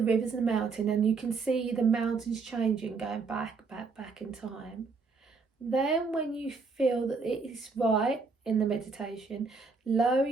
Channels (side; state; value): left; quieter; 4.5 dB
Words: rivers and the mountain, and you can see the mountains changing, going back in time. Then when you feel that it is right in the meditation, lower